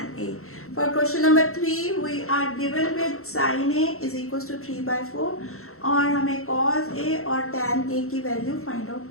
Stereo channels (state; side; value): late; right; 0.63 ms